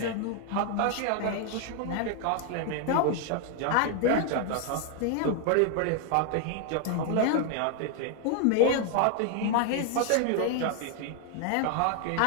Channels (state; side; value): different; both; correlation 0.00